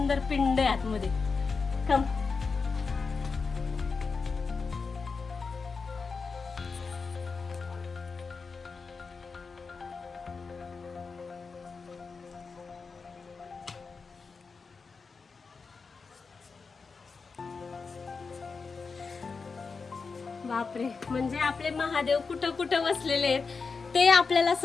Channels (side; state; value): right; quieter; 4.8 dB